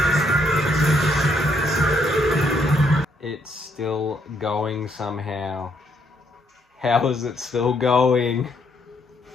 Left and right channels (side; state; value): both; normal; correlation 0.72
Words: It's still going somehow. How is it still going?